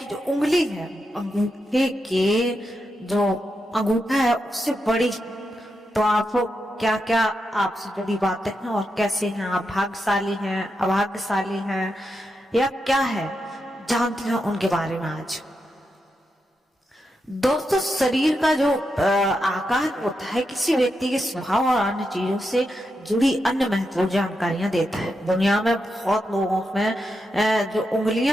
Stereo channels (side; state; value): both; normal; correlation 0.86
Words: जो उंगली है, अंगूठे के जो अंगूठा है उससे बड़ी, तो आपको क्या क्या आपसे जुड़ी बातें हैं और कैसे हैं आप, भाग्यशाली हैं, अभाग्यशाली हैं या क्या है, जानते हैं उनके बारे में आज। दोस्तों, शरीर का जो आकार होता है किसी व्यक्ति के स्वभाव और अन्य चीजों से जुड़ी अन्य महत्वपूर्ण जानकारियां देता है। दुनिया में बहुत लोगों में जो